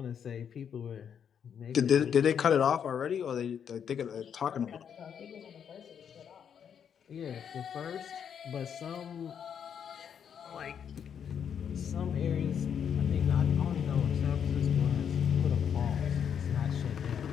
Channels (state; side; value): quieter; right; 8.0 dB